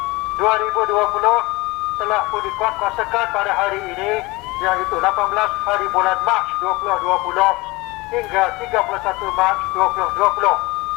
2020 telah pun dikuatkuasakan pada hari ini, iaitu 18 hari bulan Mac 2020 hingga 31 Mac 2020.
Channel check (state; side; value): quieter; right; 22.8 dB